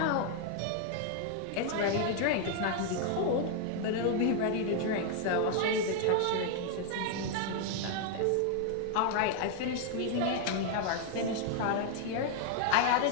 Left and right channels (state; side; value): different; both; correlation 0.00